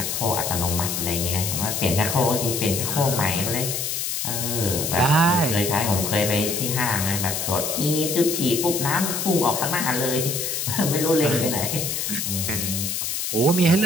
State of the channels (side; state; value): left; noise; hiss, 2 dB below the sound